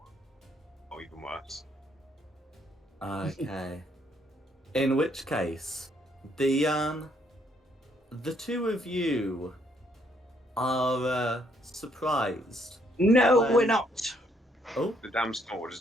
Oh, even worse. Okay. In which case, the two of you are surprised. No, when... we're not. Oh, the damn sword,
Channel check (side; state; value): both; normal; correlation 0.70